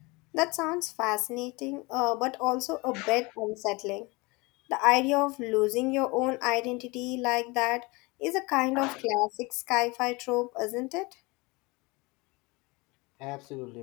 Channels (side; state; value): right; quieter; 25.4 dB